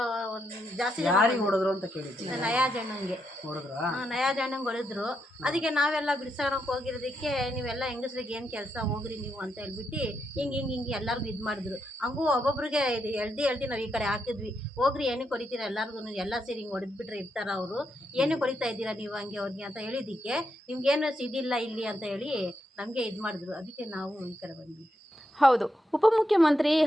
ಒಂದು ಜಾಸ್ತಿ ಯಾರಿಗೆ ಹೊಡೆದ್ರು ಅಂತ ಕೇಳಿದ್ವಿ. ನಯಾಜ್ ಅಣ್ಣಂಗೆ ಹೊಡೆದ್ರಾ? ನಯಾಜ್ ಅಣ್ಣಂಗೆ ಹೊಡೆದ್ರು. ಅದಕ್ಕೆ ನಾವೆಲ್ಲ ಬಿಡ್ಸೋಣಕ್ಕೆ ಹೋಗಿರೋದಕ್ಕೆ ನೀವೆಲ್ಲ ಹೆಂಗಸ್ರಿಗೆ ಏನು ಕೆಲಸ ಹೋಗ್ರಿ ನೀವು ಅಂತ ಹೇಳ್ಬಿಟ್ಟು ಹಿಂಗೆ ಎಲ್ಲರಿಗೂ ಇದು ಮಾಡಿದ್ರು. ಹಂಗೂ ಒಬ್ಬೊಬ್ರಿಗೆ ಇದು ಎಳ್ದು ನಾವು ಈ ಕಡೆ ಹಾಕಿದ್ವಿ. ಹೋಗ್ರಿ ಏನಕ್ಕೆ ಹೊಡಿತೀರ ಎಲ್ಲರಿಗೂ, ಎಲ್ಲ ಸೇರಿ ಹಿಂಗೆ ಹೊಡೆದ್ಬಿಟ್ರೆ ಇರ್ತಾರ ಅವರು, ಏನಕ್ಕೆ ಹೊಡಿತಾ ಇದ್ದೀರಾ ನೀವು ಹಂಗೆ ಅವ್ರಿಗೆ ಅಂತ ಹೇಳಿದ್ದಕ್ಕೆ ನಿಮ್ಗೇನು ಇದಿಲ್ಲ ಇಲ್ಲಿ ಅಂತ ಹೇಳಿ ನಮಗೆ ಇದು ಮಾಡಿದ್ರು. ಅದಕ್ಕೆ ನಾವು ಈ ಕಡೆ ಬಂದ್ವಿ. ಹೌದು, ಉಪಮುಖ್ಯಮಂತ್ರಿ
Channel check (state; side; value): normal; both; correlation 0.81